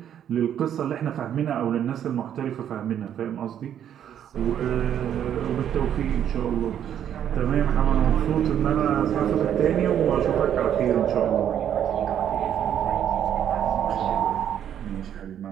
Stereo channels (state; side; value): quieter; left; 9.8 dB